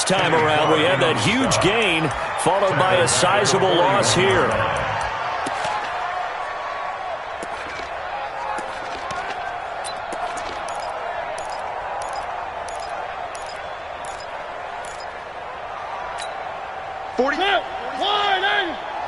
time around. We had that huge gain followed by a sizable loss here.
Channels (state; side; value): identical; both; correlation 1.00